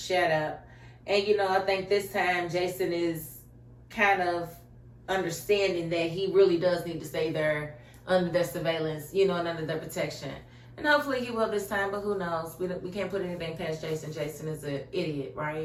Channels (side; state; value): both; identical; correlation 1.00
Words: up. And, you know, I think this time Jason is kind of understanding that he really does need to stay there under their surveillance, you know, and under their protection. And hopefully he will this time, but who knows? We can't put anything past Jason. Jason is an idiot,